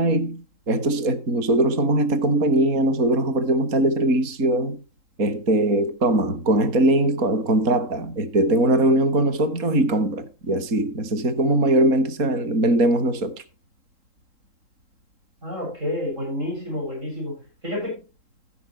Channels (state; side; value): late; left; 3.8 ms